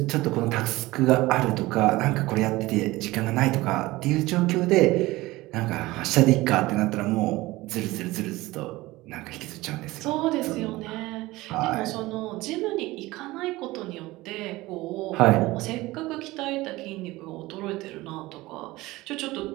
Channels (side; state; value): left; quieter; 19.4 dB